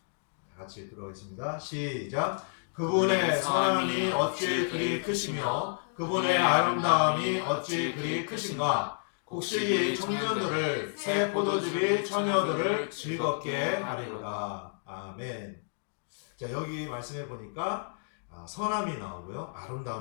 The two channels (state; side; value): silent; right; digital silence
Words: 들어가겠습니다. 시작. 그분의 선함이 어찌 그리 크시며 그분의 아름다움이 어찌 그리 크신가. 곡식이 청년들을 새 포도즙이 처녀들을 즐겁게 하리로다. 아멘. 자, 여기 말씀해 보니까 선함이 나오고요,